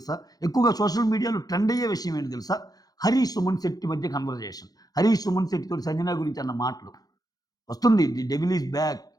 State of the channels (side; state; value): right; late; 0.18 ms